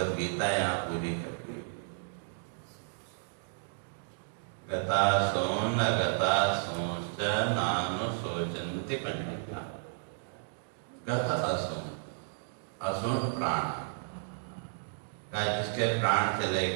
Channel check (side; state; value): left; silent; digital silence